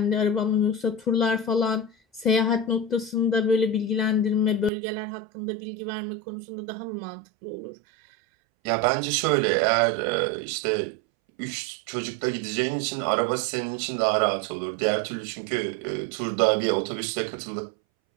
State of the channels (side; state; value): left; drops out; at 4.7 s